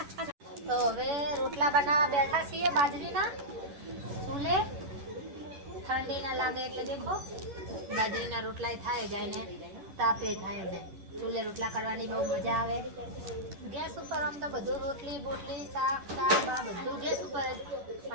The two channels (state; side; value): late; left; 11 ms